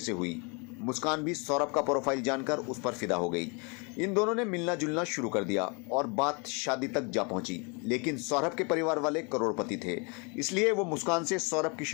हुई। मुस्कान भी सौरभ का प्रोफाइल जानकर उस पर फिदा हो गई। इन दोनों ने मिलना जुलना शुरू कर दिया और बात शादी तक जा पहुंची। लेकिन सौरभ के परिवार वाले करोड़पति थे, इसलिए वो मुस्कान से सौरभ की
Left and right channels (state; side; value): quieter; right; 32.7 dB